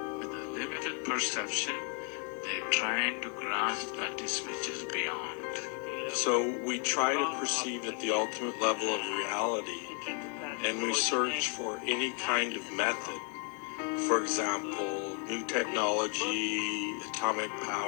With a limited perception, they're trying to grasp that which is beyond. So we try to perceive at the ultimate level of reality, and we search for any kind of method. For example, new technology, atomic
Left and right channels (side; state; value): right; quieter; 35.9 dB